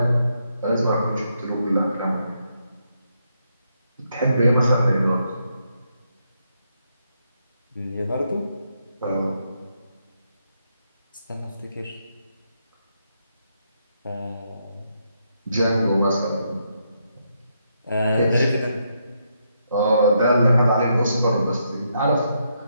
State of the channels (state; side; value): inverted; both; correlation -0.78